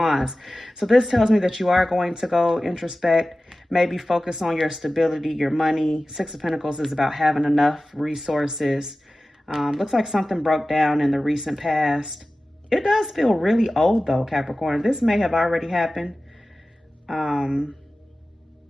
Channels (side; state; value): both; normal; correlation 0.96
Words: So this tells me that you are going to go introspect, maybe focus on your stability, your money. Six of Pentacles is about having enough resources. Looks like something broke down in the recent past. It does feel really old, though, Capricorn. This may have already happened. And,